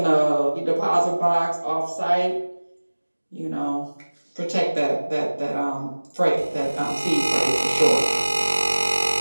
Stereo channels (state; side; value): inverted; both; correlation -1.00